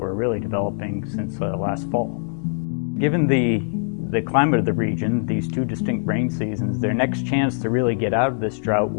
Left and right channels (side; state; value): right; silent; digital silence